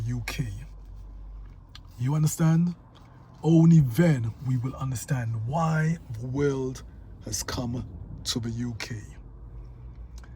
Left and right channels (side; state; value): both; identical; correlation 1.00